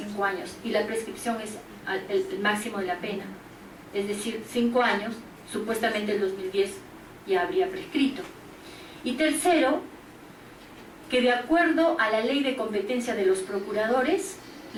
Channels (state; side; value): identical; both; correlation 1.00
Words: años y la prescripción es el máximo de la pena. Es decir, 5 años, supuestamente el 2010 ya habría prescrito. Y tercero, que de acuerdo a la ley de competencia de los procuradores,